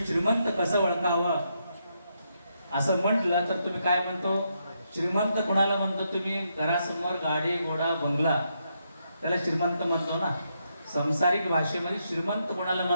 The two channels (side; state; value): both; inverted; correlation -0.80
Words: श्रीमंत कसं ओळखावं असं म्हटलं तर तुम्ही काय म्हणतो, श्रीमंत कोणाला म्हणतो तुम्ही? घरासमोर गाडी घोडा बंगला त्याला श्रीमंत म्हणतो ना. संसारिक भाषेमध्ये श्रीमंत कोणाला